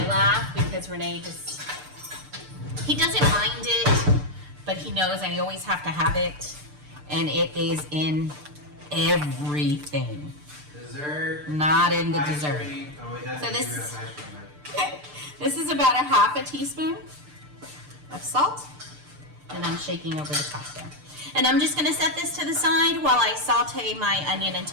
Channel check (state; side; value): late; left; 6.7 ms